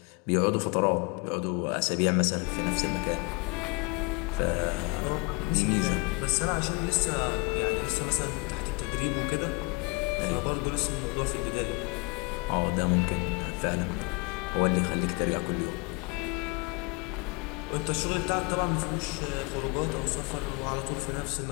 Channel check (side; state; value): right; quieter; 29.4 dB